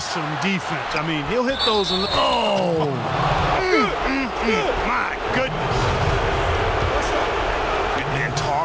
defense. I mean, he'll hit those. Oh! My goodness. And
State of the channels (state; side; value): identical; both; correlation 1.00